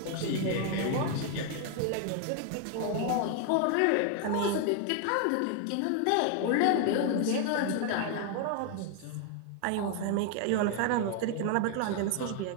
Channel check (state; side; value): different; both; correlation 0.00